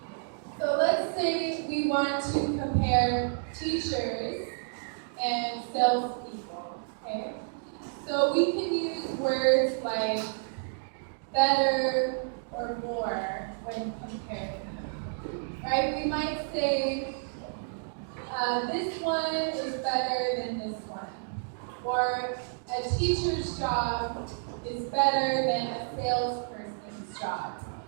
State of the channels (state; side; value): silent; left; digital silence